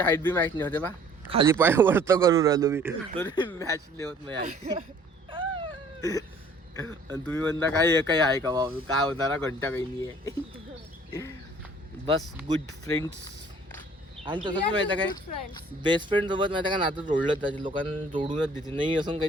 हाईट बी मॅच नाही होते बा. खाली पाय वरत करून राहिलो मी तरी मॅच नाही होत. मी आणि तुम्ही म्हणता काय हे काही आहे का बाबा, काय होणार घंटा काही नाही आहे. बस गुड फ्रेंड्स. आणि तसं पण माहिती काय, फ्रेंड्स. बेस्ट फ्रेंड सोबत माहिती का नातं जोडलं त्याचे, लोकांना जोडूनच देते, नाही असं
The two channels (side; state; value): both; normal; correlation 0.55